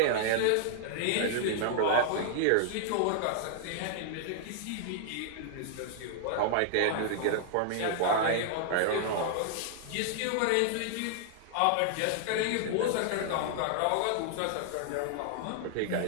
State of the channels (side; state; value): both; different; correlation -0.01